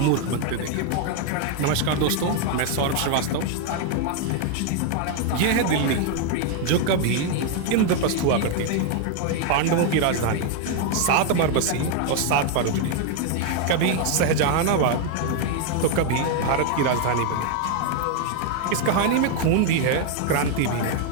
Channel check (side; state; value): both; different; correlation 0.01